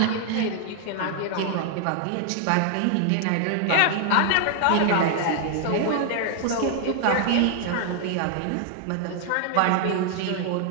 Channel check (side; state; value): both; different; correlation 0.00